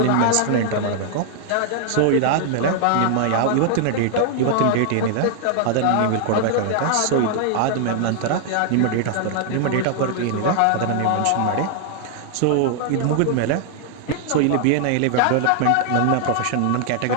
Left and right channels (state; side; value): different; both; correlation 0.00